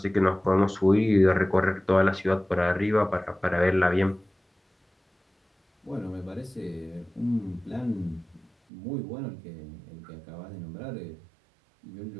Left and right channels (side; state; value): left; drops out; at 8.5 s